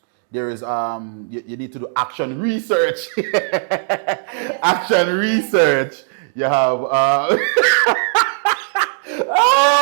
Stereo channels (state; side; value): silent; left; 67 dB below the other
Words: there is you need to do action research. Action research. You have oh